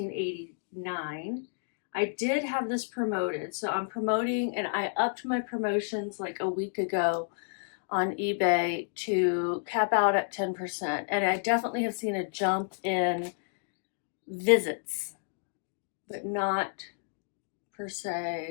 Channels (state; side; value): silent; right; digital silence